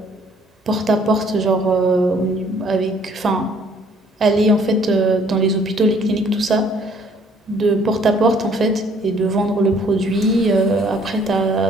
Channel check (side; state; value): both; normal; correlation 0.61